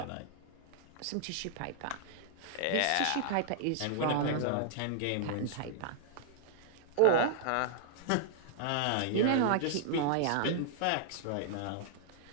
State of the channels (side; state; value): both; different; correlation -0.01